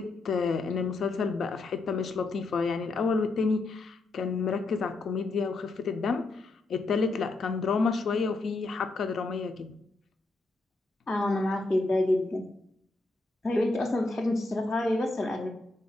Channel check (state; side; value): quieter; right; 3.2 dB